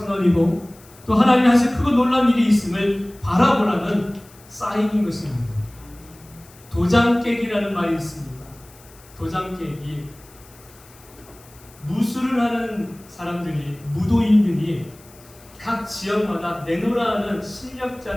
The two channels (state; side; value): noise; left; hiss, 25 dB below the sound